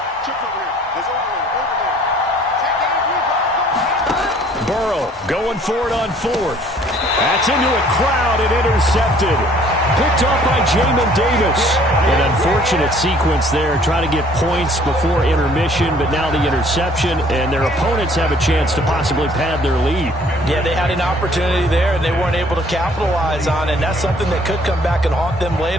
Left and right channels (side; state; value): both; normal; correlation 0.58